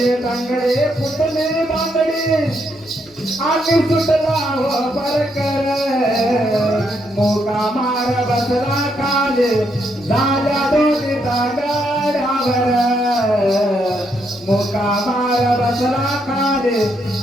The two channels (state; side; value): normal; both; correlation 0.77